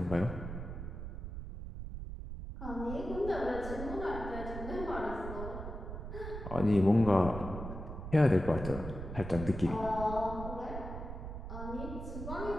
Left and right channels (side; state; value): right; noise; rumble, 7 dB below the sound